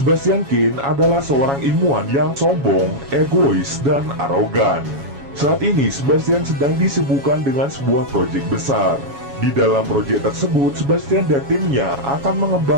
Kane adalah seorang ilmuwan yang sombong, egois, dan arogan. Saat ini Sebastian sedang disibukkan dengan sebuah proyek besar. Di dalam proyek tersebut, Sebastian dan timnya akan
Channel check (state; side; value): late; left; 7.2 ms